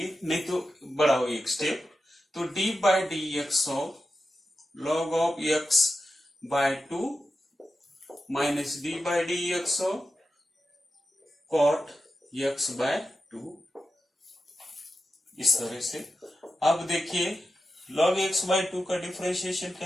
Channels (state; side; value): normal; both; correlation 0.91